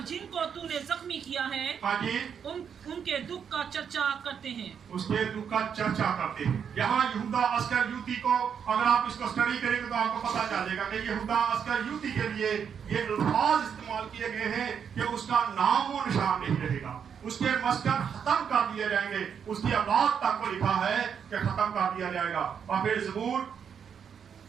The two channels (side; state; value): left; quieter; 7.5 dB